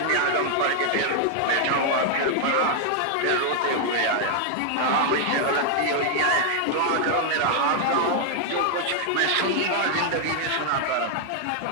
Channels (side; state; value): both; different; correlation 0.00